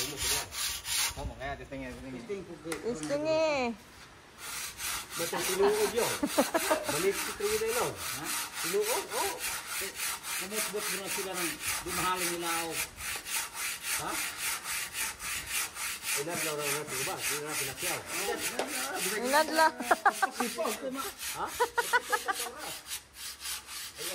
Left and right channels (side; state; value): both; identical; correlation 1.00